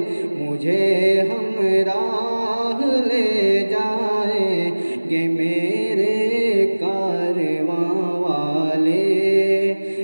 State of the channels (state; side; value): inverted; both; correlation -1.00